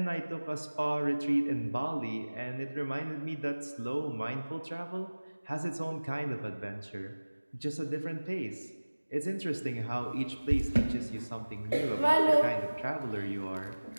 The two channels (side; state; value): both; inverted; correlation -1.00